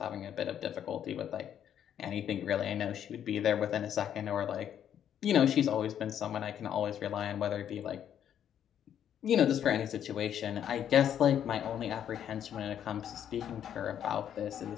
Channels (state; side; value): quieter; right; 9.6 dB